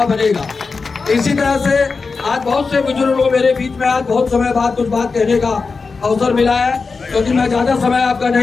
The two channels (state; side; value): quieter; right; 4.5 dB